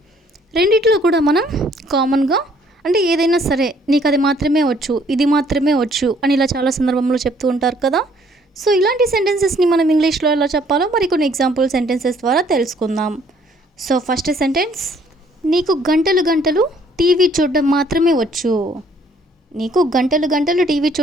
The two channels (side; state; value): both; normal; correlation 0.62